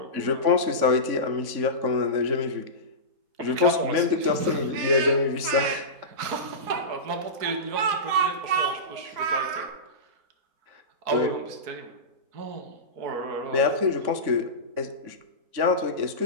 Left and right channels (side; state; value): left; late; 3.6 ms